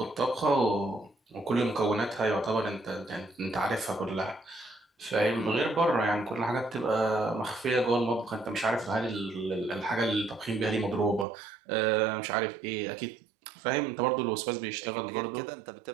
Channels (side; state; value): left; drops out; at 11.2 s